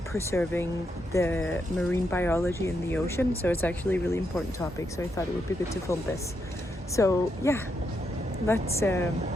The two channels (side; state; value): both; normal; correlation 0.81